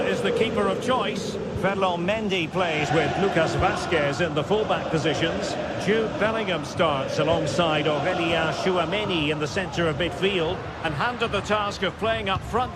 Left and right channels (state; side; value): identical; both; correlation 1.00